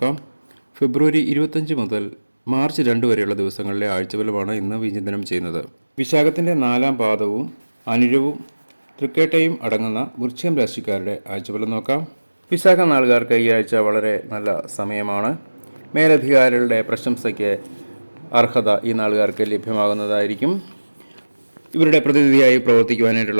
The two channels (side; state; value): both; inverted; correlation -1.00